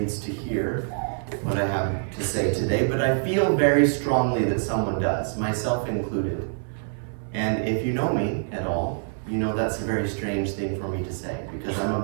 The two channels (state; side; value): silent; left; 61 dB below the other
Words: to hear what I have to say today, but I feel very strongly that someone does, myself included. And if you know me at all, you know that's a very strange thing for me to say, because I'm